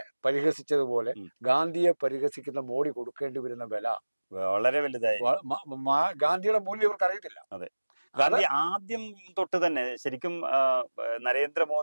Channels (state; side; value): inverted; both; correlation -1.00